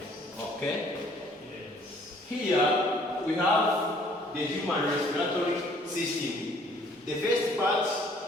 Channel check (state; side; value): normal; both; correlation 0.59